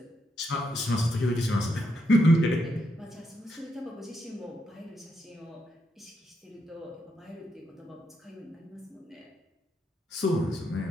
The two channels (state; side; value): normal; both; correlation 0.80